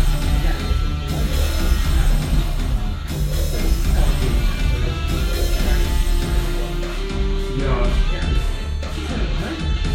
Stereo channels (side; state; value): both; identical; correlation 1.00